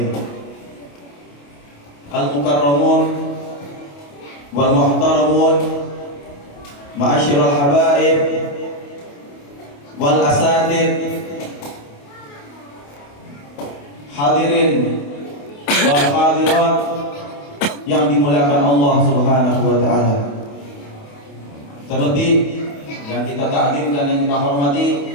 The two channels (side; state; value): right; late; 28 ms